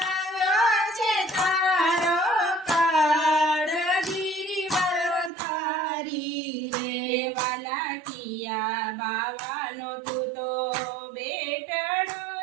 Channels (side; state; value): left; drops out; at 5.3 s